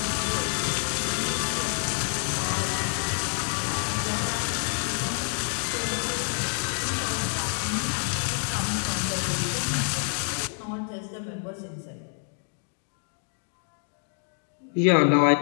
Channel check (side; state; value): right; silent; 57 dB below the other